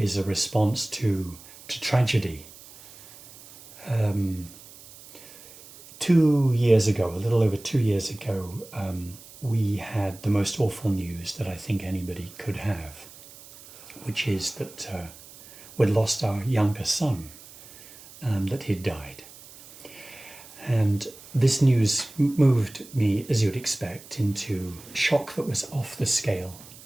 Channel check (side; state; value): right; noise; hiss, 20 dB below the sound